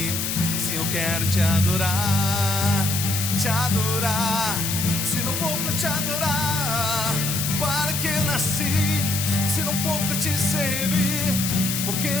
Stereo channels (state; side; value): noise; left; hiss, 2 dB below the sound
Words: Se eu quero te adorar, se não for para te adorar, para que nasci? Se não for para te servir, porque